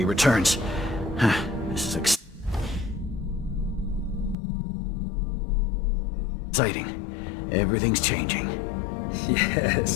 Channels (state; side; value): drops out; right; at 4.4 s